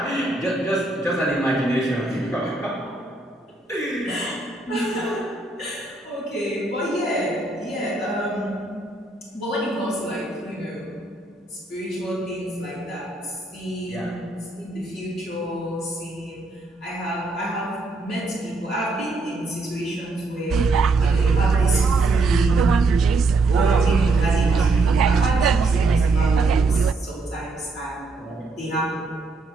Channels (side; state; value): left; quieter; 3.3 dB